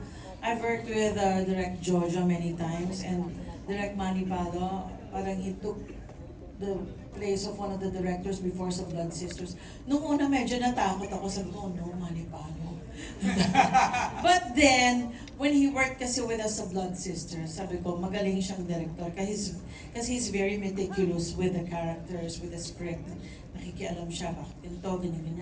I've worked with Direct Jojo many times and Direct Manny Palo. Parang he took the place of one of the directors before sa Blood Sisters. Nung una medyo natakot ako, sabi ko, oh no, Manny Palo. But then, when he worked kasi with us sa Blood Sisters, sabi ko, magaling siyang director kasi he's very meticulous with the characters, with the script. Nakikialam siya, bakit ganito,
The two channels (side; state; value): both; identical; correlation 1.00